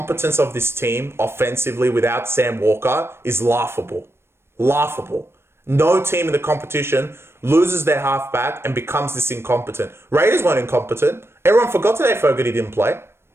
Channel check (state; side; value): late; left; 0.12 ms